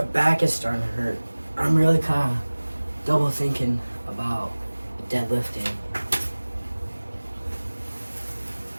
back is starting to hurt. I'm really kind of double thinking about deadlifting.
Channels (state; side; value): inverted; both; correlation -1.00